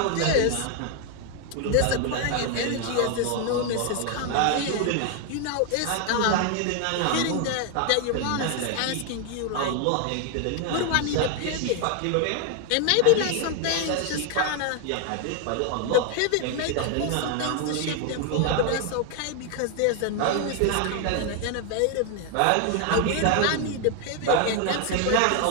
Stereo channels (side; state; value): both; different; correlation 0.01